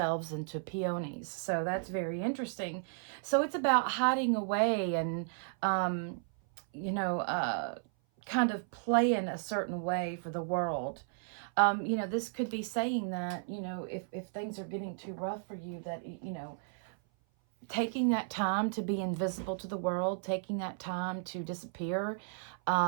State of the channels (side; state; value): left; silent; 55 dB below the other